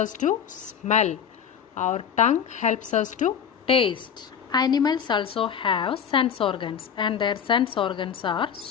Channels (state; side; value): quieter; right; 8.0 dB